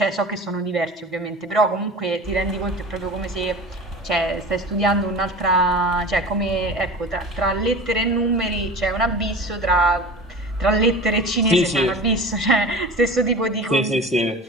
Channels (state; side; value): normal; both; correlation 0.35